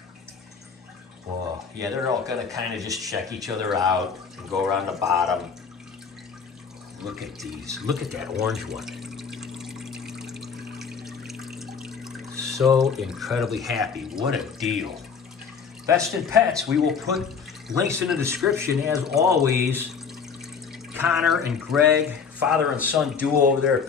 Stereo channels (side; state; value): right; quieter; 6.0 dB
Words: Well, yeah, they're all gonna kind of just check each other out and go around the bottom. Look at these. Look at that orange one. So incredibly happy. What a deal. Best in Pets, we will put links in the description as always. Connor and Greg, father and son duo over there at